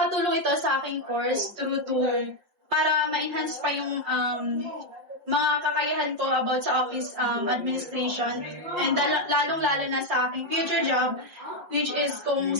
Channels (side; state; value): left; late; 5.7 ms